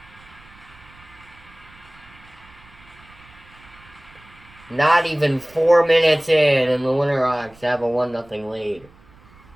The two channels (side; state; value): right; noise; rumble, 25 dB below the sound